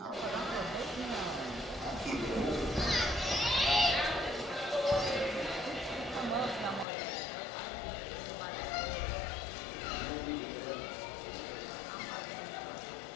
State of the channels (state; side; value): drops out; right; at 6.9 s